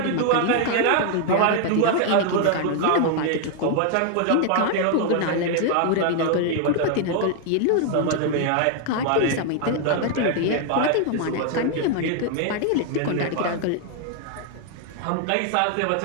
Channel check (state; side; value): different; both; correlation 0.00